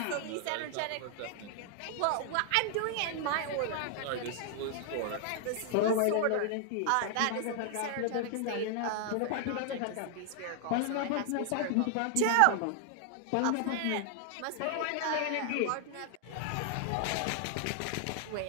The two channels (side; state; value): both; different; correlation 0.00